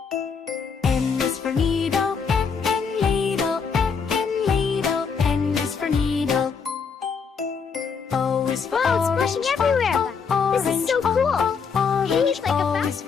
N is for needle, N, N, needle, N, N, needle. N is for needle. O is for Wow, it's orange, splashing everywhere. orange, This is so cool. orange. Hey, like a O fountain. is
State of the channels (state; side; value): quieter; right; 5.9 dB